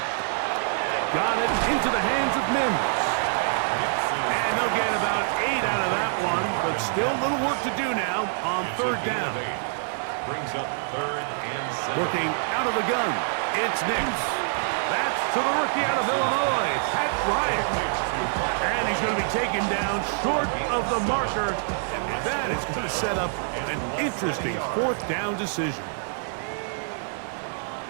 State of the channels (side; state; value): left; silent; digital silence